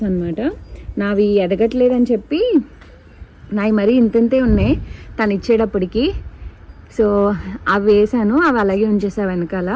అనమాట. నావి ఎదగట్లేదని చెప్పి నావి మరీ ఇంతంతే ఉన్నాయి తను ఇచ్చేటప్పటికి. సో అవి వేసాను, అవి అలాగే ఉంచేసా వెనకాల.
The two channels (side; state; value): both; identical; correlation 1.00